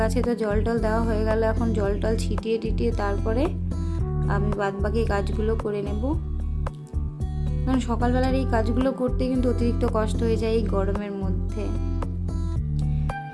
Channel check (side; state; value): both; identical; correlation 1.00